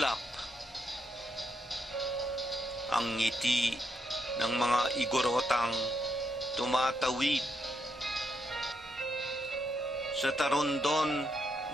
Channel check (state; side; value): normal; both; correlation 0.79